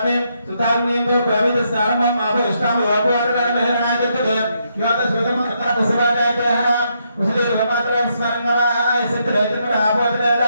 సుధార్ణీయం సమర్పయామి. స్నానం ఆపో ఇష్టామ వాపవాదన మహరణాగతే యోత స్వతం ప్రసవాదాయః ఉసిరే రమాత్రం స్మరణవాయ సిద్ధరేతపర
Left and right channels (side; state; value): both; inverted; correlation -0.77